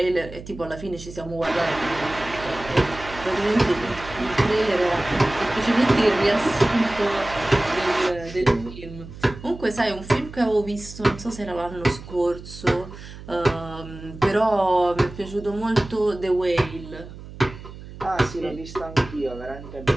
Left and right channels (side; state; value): right; noise; hum, 15 dB below the sound